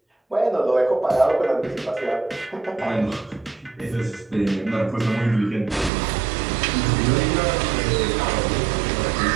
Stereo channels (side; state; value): left; drops out; at 5.9 s